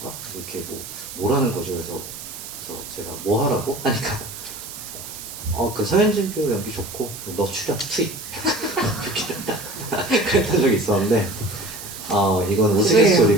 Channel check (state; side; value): noise; right; hiss, 11 dB below the sound